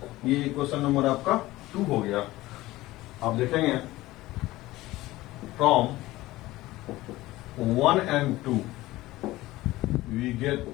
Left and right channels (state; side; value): quieter; right; 17.9 dB